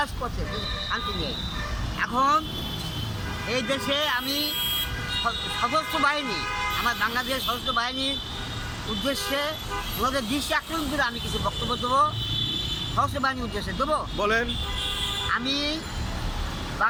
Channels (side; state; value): both; identical; correlation 1.00